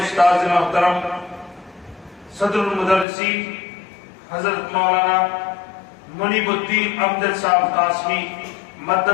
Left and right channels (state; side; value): drops out; right; at 3.1 s